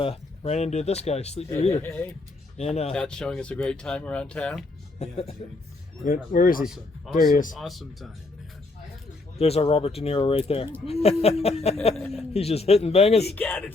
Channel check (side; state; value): right; quieter; 3.3 dB